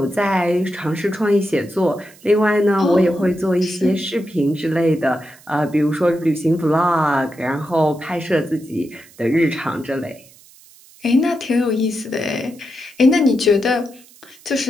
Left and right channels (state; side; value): noise; right; hiss, 25 dB below the sound